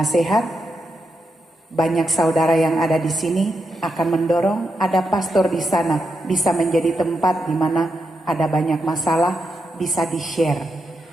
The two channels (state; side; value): normal; both; correlation 0.84